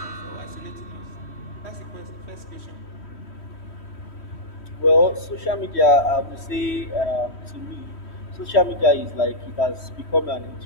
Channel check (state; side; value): late; right; 3.1 ms